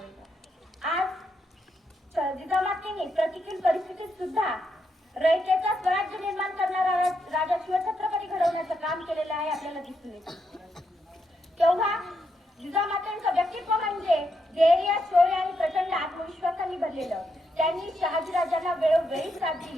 आज जिजामातेने प्रतिकूल परिस्थितीत सुद्धा रयतेचा स्वराज्य निर्माण करणारा राजा शिवछत्रपती घडवण्याचं काम केलेलं आहे आपल्याला दिसून येतं. तेव्हा जिजामातांचं व्यक्तित्व म्हणजे धैर्य, शौर्य आणि प्रचंड आत्मविश्वासाने भरलेलं. त्यांनी शहाजीराजांना वेळोवेळी साथ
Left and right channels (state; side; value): normal; both; correlation 0.80